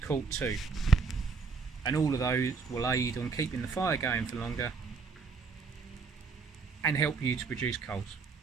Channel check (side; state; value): left; quieter; 5.1 dB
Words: too. And all of those will aid on keeping the fire going for longer and help you to produce coals.